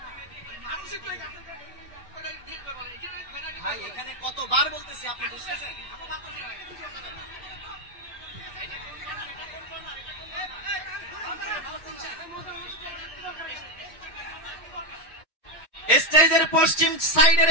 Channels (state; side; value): normal; both; correlation 0.06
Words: এখানে কতবার বলতেছি, আপনি বুঝতেছেন? স্টেজের পশ্চিম